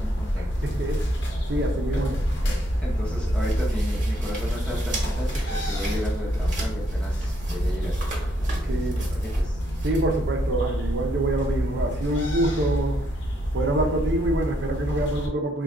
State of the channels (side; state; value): both; normal; correlation 0.73